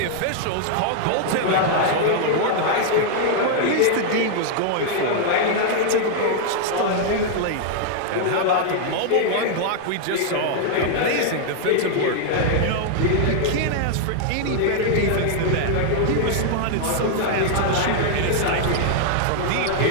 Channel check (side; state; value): both; different; correlation -0.01